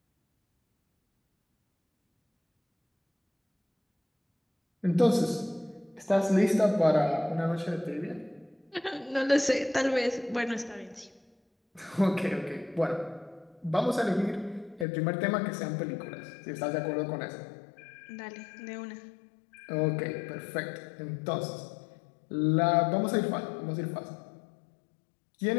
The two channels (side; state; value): right; drops out; at 14.9 s